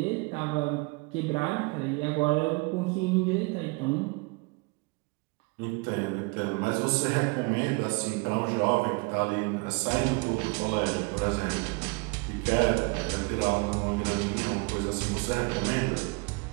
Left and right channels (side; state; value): left; quieter; 28.6 dB